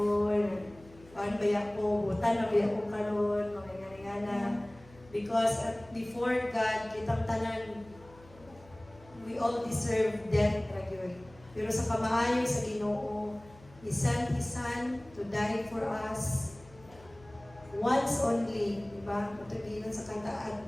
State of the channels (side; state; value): left; noise; hum, 23 dB below the sound